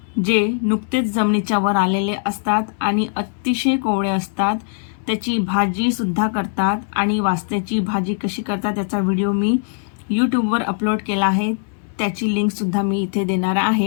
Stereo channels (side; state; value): right; silent; 65 dB below the other